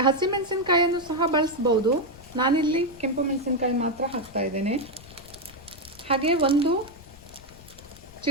ಹಸಿ ಮೆಣಸಿನಕಾಯಿಯನ್ನು ಸಹ ಬಳಸ್ಬೋದು. ನಾನಿಲ್ಲಿ ಕೆಂಪು ಮೆಣಸಿನಕಾಯಿ ಮಾತ್ರ ಹಾಕ್ತಾ ಇದ್ದೇನೆ. ಹಾಗೆ 1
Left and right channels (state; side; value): noise; left; rumble, 21 dB below the sound